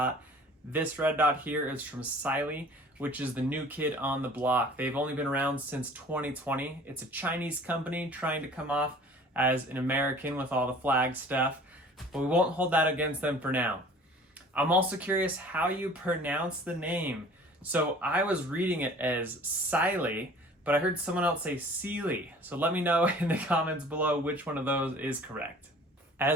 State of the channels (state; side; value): normal; both; correlation 0.48